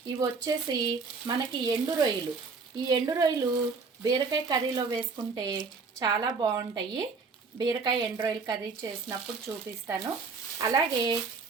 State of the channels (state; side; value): quieter; left; 4.6 dB